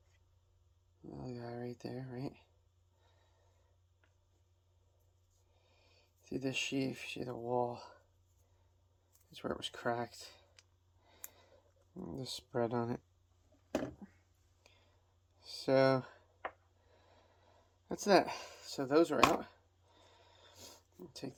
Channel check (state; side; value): identical; both; correlation 1.00